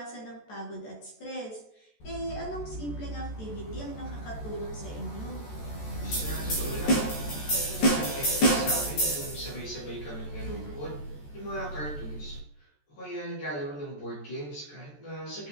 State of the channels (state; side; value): late; right; 14 ms